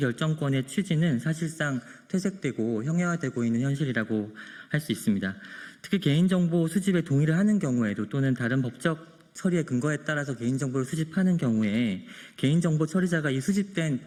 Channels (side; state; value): both; identical; correlation 1.00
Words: 취지는 사실상 퇴색되고 형해화되고 있는 현실이라고 할 수 있습니다. 특히 개인정보 수집에 동의를 하는 경우에도 또는 다른 법적 처리의 근거에 따라서 개인정보를 수집하는 경우에 개인정보 처리자가 이 수집된